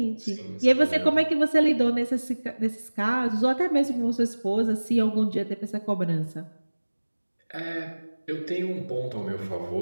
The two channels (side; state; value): both; inverted; correlation -1.00